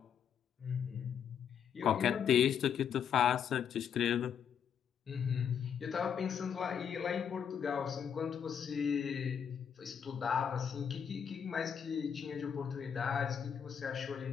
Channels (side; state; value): right; quieter; 7.9 dB